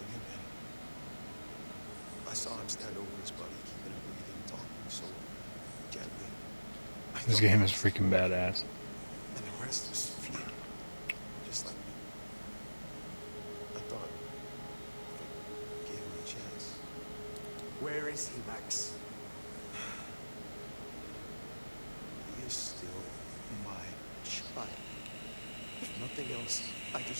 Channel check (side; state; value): both; inverted; correlation -1.00